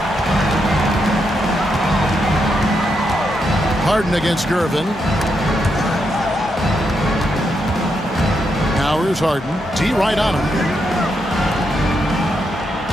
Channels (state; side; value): normal; both; correlation 0.82